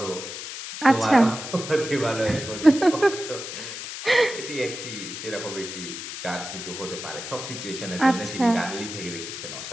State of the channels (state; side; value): noise; left; hiss, 8 dB below the sound